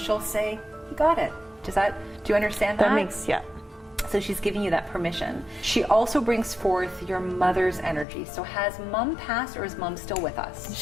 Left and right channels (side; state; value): right; drops out; at 8.1 s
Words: say, you got it. Do you understand that? That makes, yeah. So she's giving you that permission. She also brings forth your mother's energy. So has mom passed or is mom still with us?